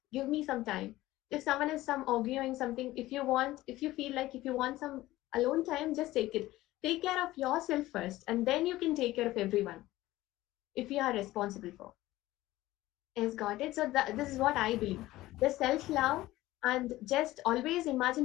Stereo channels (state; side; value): quieter; right; 16.8 dB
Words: give me some time. If someone is some arguing something, if you want, if you feel like if you want some alone time, just take it. Take care of yourself first, and then you can take care of everyone if you are responsible for. Yes, got it. So this is what I believe. The self-love, and just always